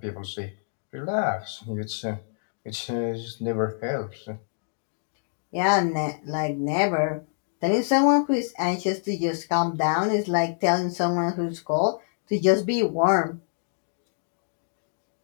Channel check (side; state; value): right; silent; digital silence